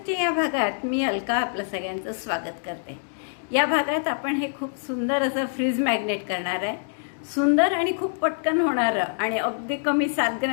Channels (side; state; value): right; silent; digital silence